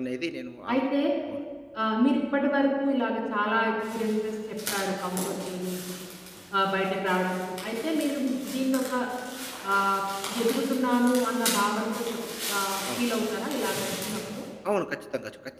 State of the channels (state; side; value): identical; both; correlation 1.00